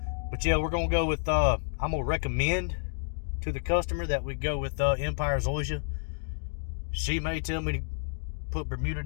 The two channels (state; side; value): silent; right; digital silence